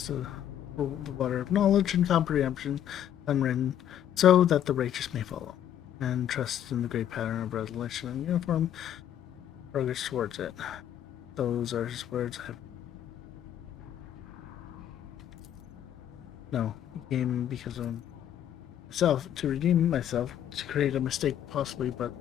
to the water of knowledge and comprehension, unwritten, so that the righteous may follow, and trust in the great pattern of resolution and uniform progress towards it. Those are his words. No, he came because of myself, to redeem myself, to create a mistake possibly, but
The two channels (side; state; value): right; quieter; 10.4 dB